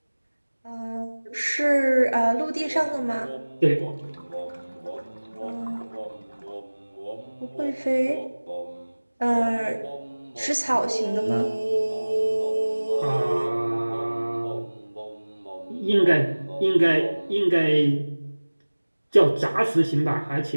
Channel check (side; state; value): both; inverted; correlation -1.00